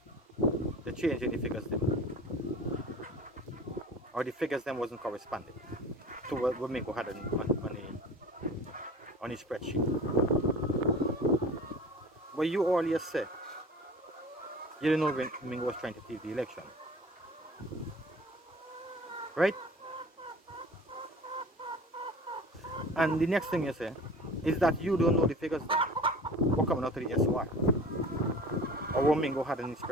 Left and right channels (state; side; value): normal; both; correlation 0.41